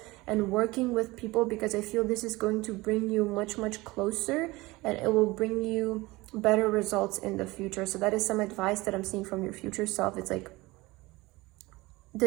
and working with people, because I feel this is going to bring you much, much closer, and it will bring you better results in the future. So that is some advice that I'm seeing from your future self. It's like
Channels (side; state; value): left; quieter; 21.3 dB